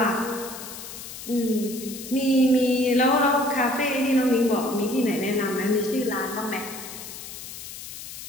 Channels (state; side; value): noise; left; hiss, 11 dB below the sound